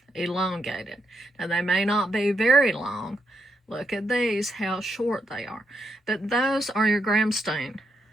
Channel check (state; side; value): normal; both; correlation 0.80